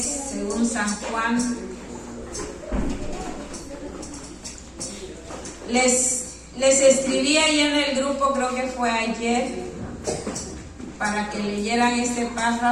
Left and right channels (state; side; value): identical; both; correlation 1.00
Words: según San Juan. Les escribí ahí en el grupo, creo que fue ayer, para que leyeran este